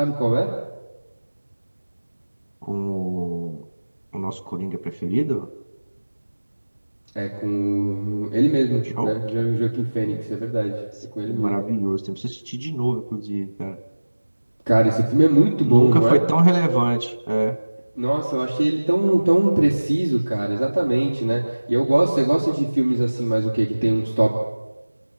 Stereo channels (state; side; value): inverted; both; correlation -1.00